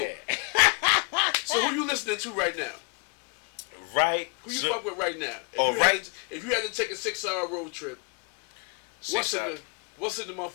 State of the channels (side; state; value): right; quieter; 36.8 dB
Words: Yeah. So who you listening to right now? Right. Who you fuck with right now? If you had to take a 6-hour road trip, what's in the